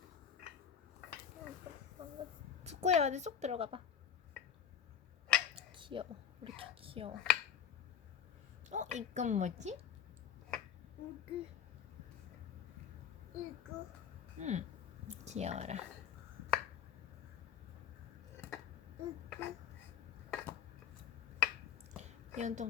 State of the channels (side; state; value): right; quieter; 8.7 dB